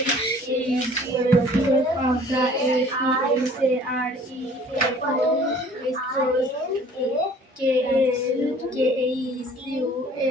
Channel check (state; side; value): normal; both; correlation 0.52